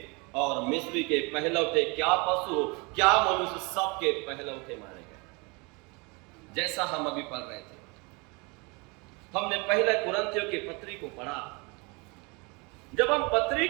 और मिस्री के पहलौठे, क्या पशु क्या मनुष्य, सबके पहलौठे मारे गए। जैसा हम अभी पढ़ रहे थे, हमने पहले कुरिन्थियों की पत्री को पढ़ा। जब हम पत्री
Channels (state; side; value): quieter; left; 29.0 dB